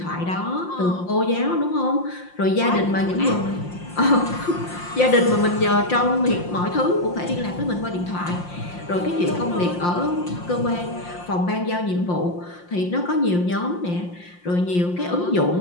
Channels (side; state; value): right; late; 5.7 ms